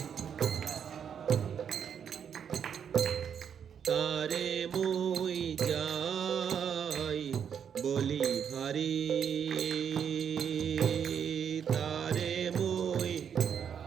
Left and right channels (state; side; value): quieter; left; 7.9 dB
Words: তারে মুই যাই বলি হারি, তারে মুই